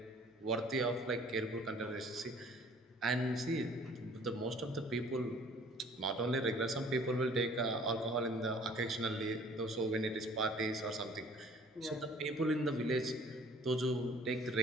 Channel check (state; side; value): normal; both; correlation 0.53